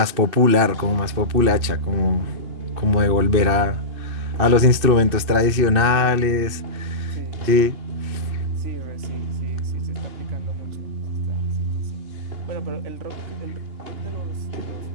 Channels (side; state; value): left; late; 2.7 ms